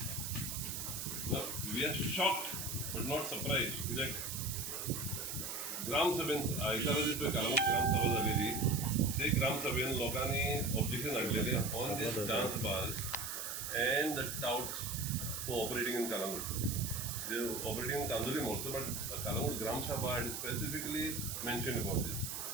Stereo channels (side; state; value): right; noise; hiss, 4 dB below the sound